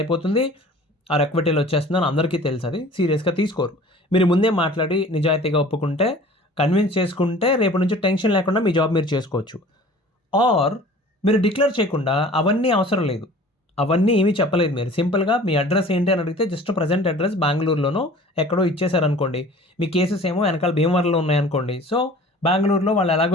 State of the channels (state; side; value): normal; both; correlation 0.46